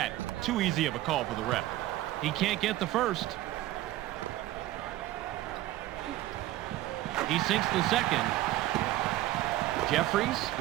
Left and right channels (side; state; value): left; quieter; 15.6 dB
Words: Too easy of a call for the ref. He can't get the first. He sinks the second. Jeffries